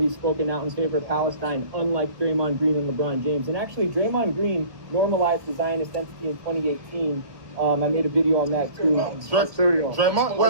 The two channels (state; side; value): late; left; 1.1 ms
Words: spoken out in favor of Palestine, unlike Draymond Green and LeBron James. And actually, Draymond Green normalized the Zionist entity in 2018. I made a video on that too. Draymond,